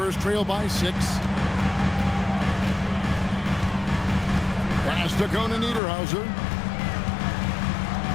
trail by 6. Pass to Conan Niederhauser.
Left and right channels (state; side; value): drops out; right; at 5.8 s